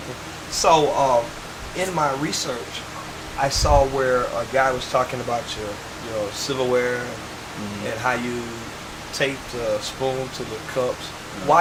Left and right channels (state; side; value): identical; both; correlation 1.00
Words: So in my research, I saw where a guy was talking about your silverware and how you taped a spoon to the cups.